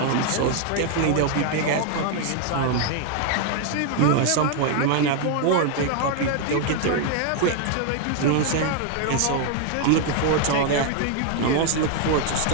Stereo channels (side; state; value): both; different; correlation 0.00